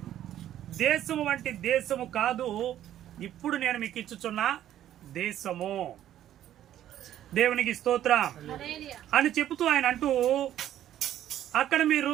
దేశము వంటి దేశము కాదు, ఇప్పుడు నేను మీకు ఇచ్చుచున్న దేశము. దేవునికి స్తోత్రం అని చెబుతూ ఆయన అంటూ, అక్కడ మీరు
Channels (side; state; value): left; quieter; 11.8 dB